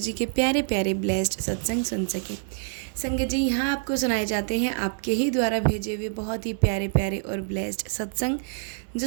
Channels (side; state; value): left; silent; 61 dB below the other